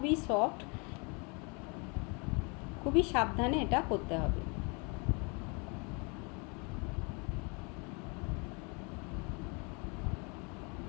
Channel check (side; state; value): right; quieter; 32.4 dB